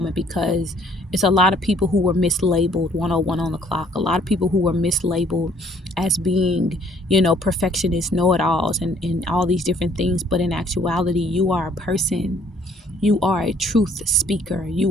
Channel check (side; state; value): both; normal; correlation 0.61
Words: because it's a lot of people who were mislabeled 101 on the clock. A lot of people who were mislabeled as being, perfectionists, know-it-alls, and all these different things. But in actuality, you are a person. You are a truth speaker.